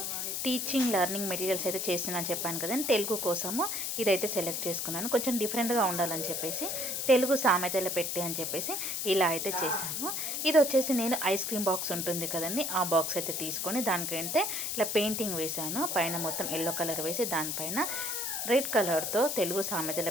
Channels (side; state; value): left; noise; hiss, 2 dB below the sound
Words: టీచింగ్ లెర్నింగ్ మెటీరియల్స్ అయితే చేస్తున్నాను చెప్పాను కదండి. తెలుగు కోసము ఇదైతే సెలెక్ట్ చేసుకున్నాను. కొంచెం డిఫరెంట్గా ఉండాలని చెప్పేసి తెలుగు సామెతలు పెట్టి అని చెప్పేసి ఇలా అయితే చేశాను. ఇది వచ్చేసి నేను ఐస్ క్రీమ్ బాక్స్ ఉంటుంది కదండి, ఆ బాక్స్ అయితే తీసుకొని దానికంటే ఇలా పెయింటింగ్ వేశాను. పైన మొత్తం ఎల్లో కలర్ వేసి దానిపైన రెడ్ కలర్తో తెలుగు సామెతలు